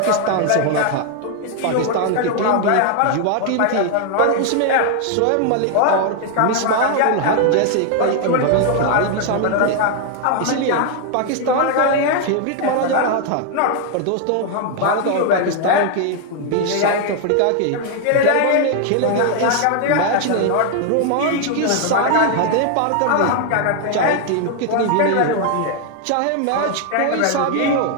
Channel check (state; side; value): different; both; correlation 0.00